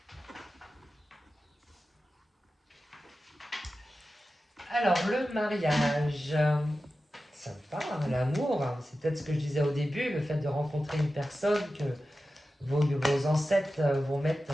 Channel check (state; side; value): normal; both; correlation 0.93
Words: Alors, le mariage. Sympa, hein, l'amour, hein. C'est peut-être ce que je disais au début, le fait de rencontrer une personne, que vos ancêtres vont mettre